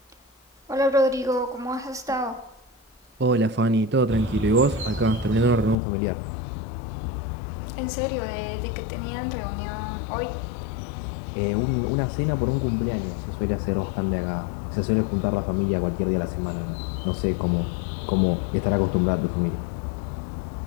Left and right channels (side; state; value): right; drops out; at 5.8 s